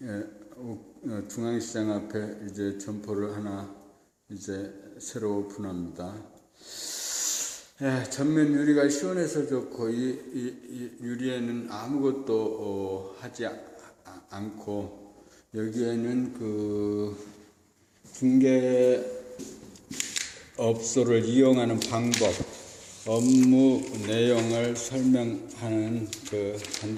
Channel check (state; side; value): identical; both; correlation 1.00